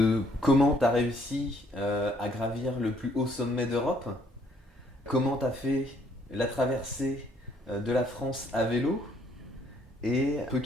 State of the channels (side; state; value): both; normal; correlation 0.66